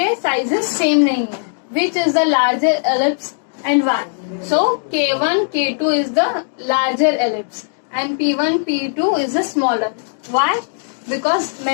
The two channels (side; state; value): right; silent; digital silence